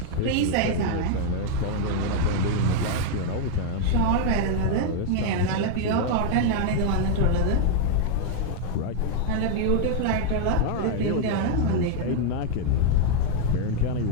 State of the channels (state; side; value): different; both; correlation 0.00